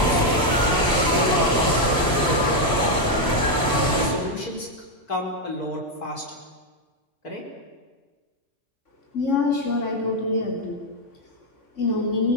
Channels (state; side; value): normal; both; correlation 0.03